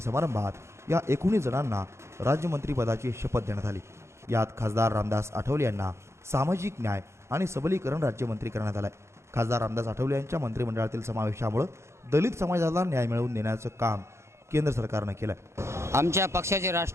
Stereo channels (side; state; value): left; late; 0.13 ms